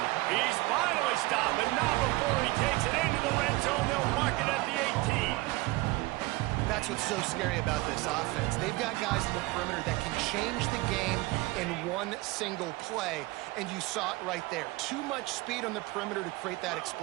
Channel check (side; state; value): left; quieter; 21.7 dB